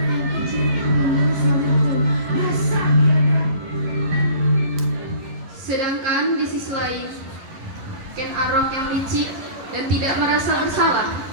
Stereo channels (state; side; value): late; left; 11 ms